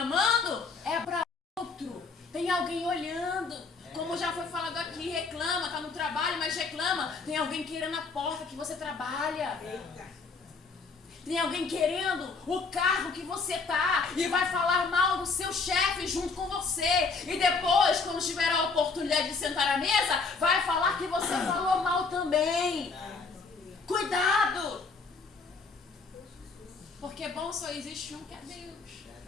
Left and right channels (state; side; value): quieter; right; 4.4 dB